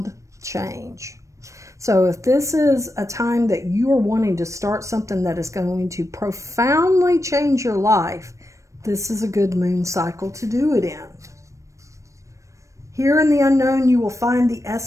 change. So if this is a time that you are wanting to start something that is going to profoundly change your life, this is a good moon cycle to do it in. Here in the unknown, you will find the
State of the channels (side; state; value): left; late; 0.15 ms